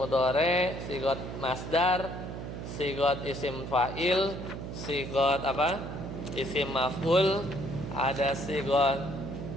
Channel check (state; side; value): noise; right; hum, 7 dB below the sound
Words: sigot masdar, sigot isim fa'il, sigot isim maf'ul, ada sigot